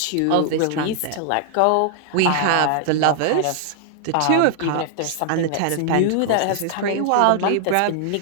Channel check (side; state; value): both; different; correlation 0.00